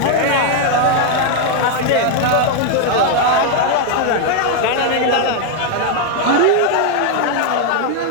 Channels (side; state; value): both; different; correlation 0.00